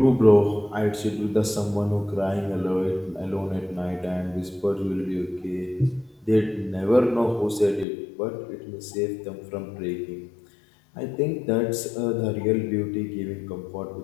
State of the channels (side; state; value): right; drops out; at 7.9 s